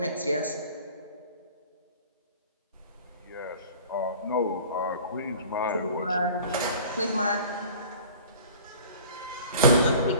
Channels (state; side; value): inverted; both; correlation -0.45